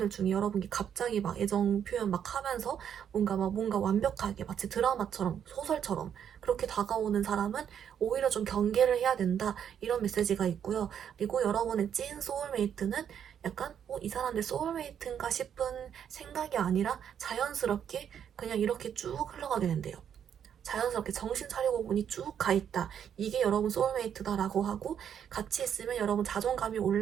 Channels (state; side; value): quieter; left; 8.7 dB